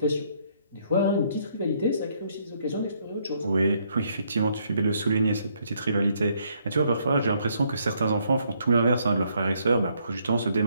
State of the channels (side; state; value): both; inverted; correlation -0.70